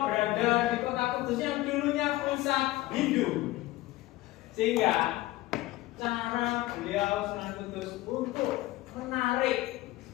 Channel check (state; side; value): quieter; right; 17.7 dB